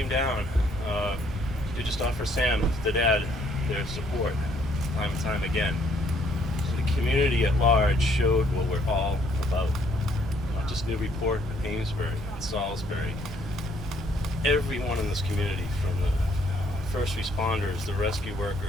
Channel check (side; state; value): both; normal; correlation 0.67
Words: down to just offer Sam, the dad, their support time and time again. So the community at large showed what we're all about. Not just Newburyport, but Amesbury and Salisbury. Everyone in this community, from the first responders, the rescue